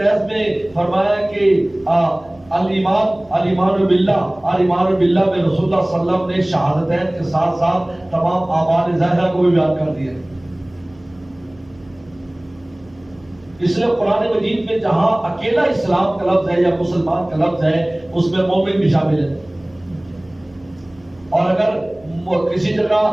میں فرمایا کہ الایمان باللہ، الایمان باللہ میں رسول اللہ صلی اللہ علیہ وسلم نے شہادتین کے ساتھ ساتھ تمام اعمال ظاہرہ کو بھی بیان کر دیا۔ اس لیے قرآن مجید میں جہاں اکیلا اسلام کا لفظ ہے یا مسلمان کا لفظ ہے، اس میں مومن بھی شامل ہے، اور اگر کسی جگہ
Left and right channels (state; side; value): noise; right; hum, 27 dB below the sound